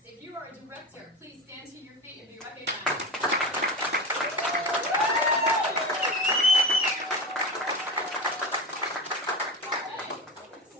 if you are a director, please stand to your feet and be recognized.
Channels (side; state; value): both; normal; correlation 0.25